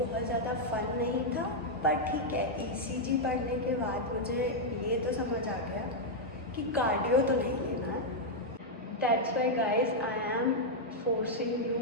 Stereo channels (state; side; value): normal; both; correlation -0.03